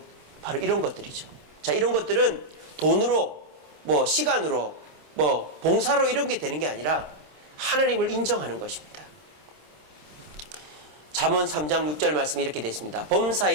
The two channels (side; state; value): left; late; 27 ms